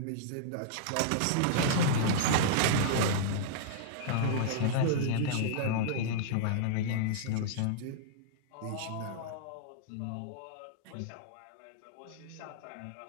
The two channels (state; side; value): different; both; correlation -0.02